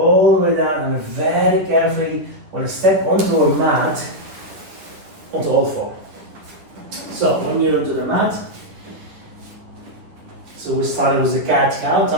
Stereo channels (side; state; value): left; late; 9.9 ms